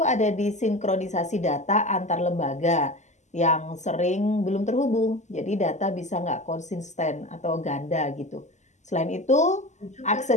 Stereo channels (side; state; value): right; late; 0.34 ms